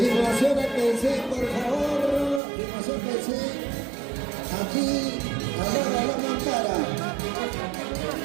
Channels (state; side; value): drops out; left; at 2.4 s